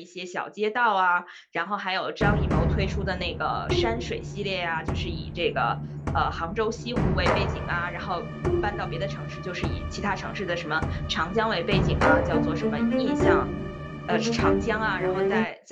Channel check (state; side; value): identical; both; correlation 1.00